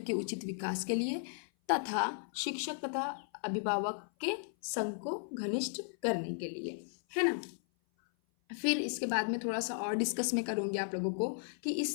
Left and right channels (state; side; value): silent; right; 54 dB below the other